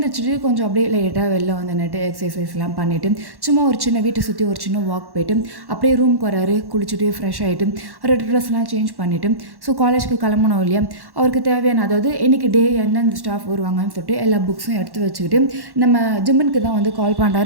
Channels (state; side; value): late; left; 1.1 ms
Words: கொஞ்சம் அப்படியே லைட்டாக வெளில வந்து நட்டு எக்ஸசைஸ்லாம் பண்ணிவிட்டு சும்மா ஒரு சின்ன வீட்டை சுற்றி ஒரு சின்ன வாக் போயிட்டு அப்படியே ரூமுக்கு வராரு. குளிச்சுட்டு ஃப்ரெஷ் ஆகிட்டு ரெண்டு ட்ரெஸ்லாம் சேஞ்ச் பண்ணிவிட்டு ஸோ காலேஜ்க்கு கிளம்பணும் இல்லையா, அவருக்கு தேவையான அதாவது இன்றைக்கி டே எந்தெந்த ஸ்டாஃப் வருவாங்கன்னு சொல்லிட்டு எல்லா புக்ஸும் எடுத்து வச்சுக்கிட்டு நம்ம ஜிம்முனுக்கு தான் வந்து கால்